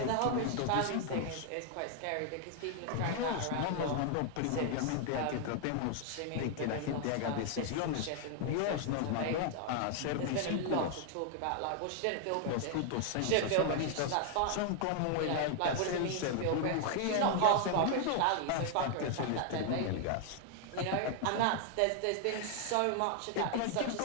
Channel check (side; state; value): both; different; correlation 0.00